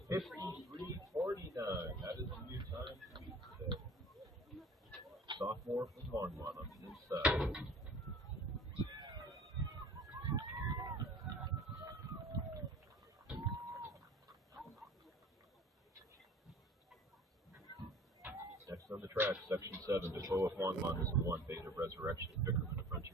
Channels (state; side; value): normal; both; correlation 0.45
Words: 53.49. That is a new time to beat today. Sophomore from Longmont on the inside. Next on the track, Section 7, Defoe of Longmont is 1, Beta Resurrection, Bickerman of